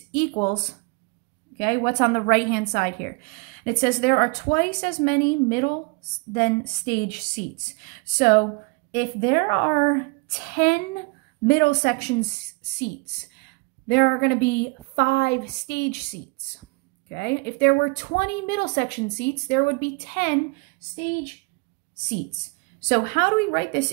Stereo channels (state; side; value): quieter; left; 29.6 dB